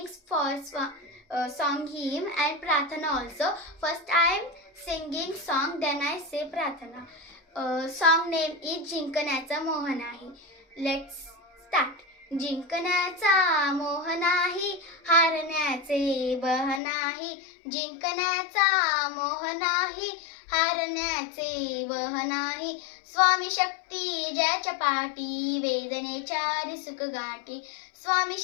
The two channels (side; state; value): right; drops out; at 16.8 s